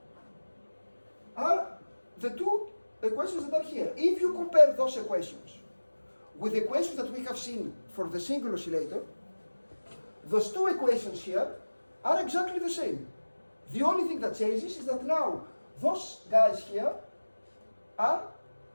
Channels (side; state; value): both; inverted; correlation -1.00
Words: are the 2 equations that are here. If you compare those equations with the equations that we have seen for the single oscillator, those 2 equations here are exactly the same. The only thing that changes is that now those guys here are